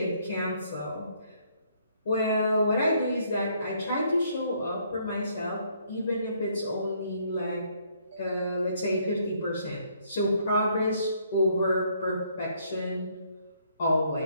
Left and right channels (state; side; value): inverted; both; correlation -0.68